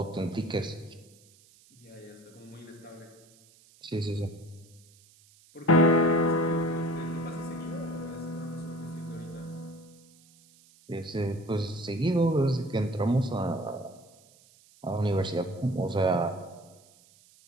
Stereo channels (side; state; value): right; noise; hiss, 27 dB below the sound